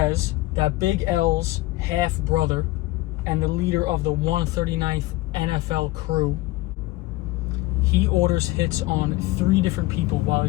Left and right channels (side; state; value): right; quieter; 18.9 dB